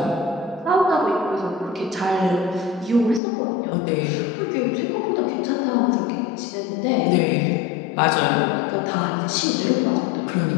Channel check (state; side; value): drops out; right; at 3.2 s